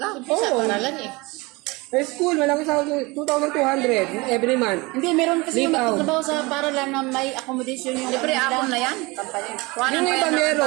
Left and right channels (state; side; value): quieter; left; 24.4 dB